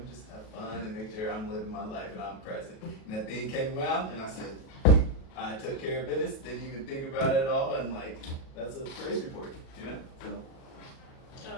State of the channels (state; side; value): late; right; 37 ms